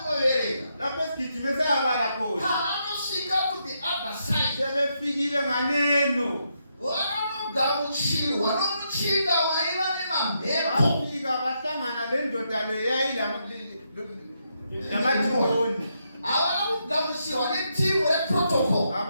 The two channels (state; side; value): inverted; both; correlation -0.80